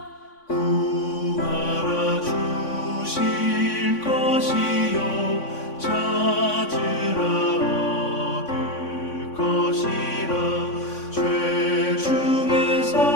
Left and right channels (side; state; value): right; late; 3.5 ms